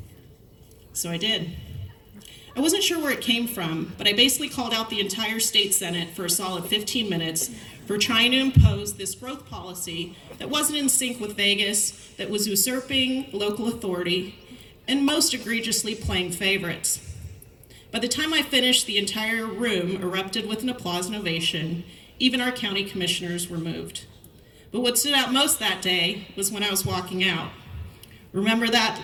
So I did. I wasn't sure where it came from, but I basically called out the entire state senate for a solid 15 minutes for trying to impose this growth policy that wasn't in sync with Vegas, that was usurping local authority, and most egregiously playing favorites. By the time I finished, the entire room erupted with an applause and ovation. Even our county commissioners were moved. But what stood out most that day was when I was walking out. Remember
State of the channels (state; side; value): identical; both; correlation 1.00